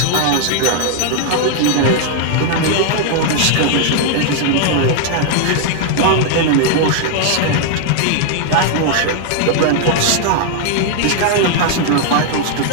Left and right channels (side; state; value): both; different; correlation 0.00